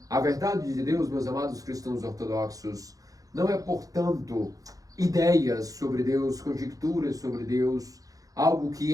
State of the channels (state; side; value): late; left; 0.17 ms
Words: A verdade de Deus, meus amados cristãos ortodoxos, não é, portanto, ideias sobre Deus, conjecturas sobre Deus, algo